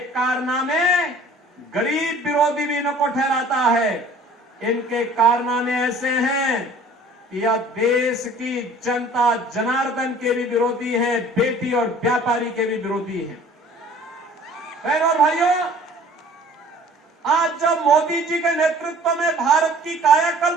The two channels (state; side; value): normal; both; correlation 0.50